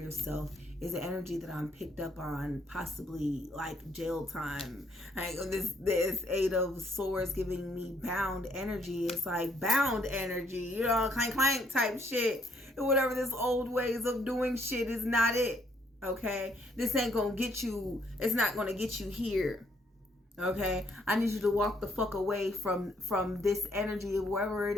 is an energy that I'm picked up on, possibly like jail time. Like this Eight of Swords giving me bound energy. It's like bound energy, you know, clank clank type shit. And whatever this old ways of doing shit is not it. Okay, this ain't gonna get you. It's not gonna get you here. Okay, I need you to walk the fuck away from this energy of wherever it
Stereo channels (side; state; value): both; normal; correlation 0.69